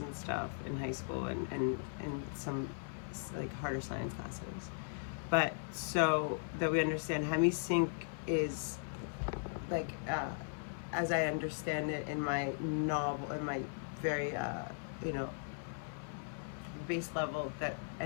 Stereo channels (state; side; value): silent; right; 52 dB below the other